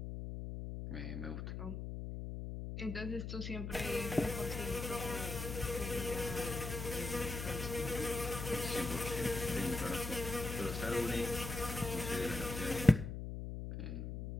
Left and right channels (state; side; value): noise; left; hum, 5 dB below the sound